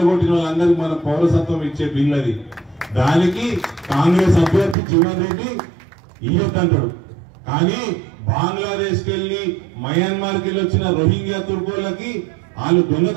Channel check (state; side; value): drops out; left; at 4.8 s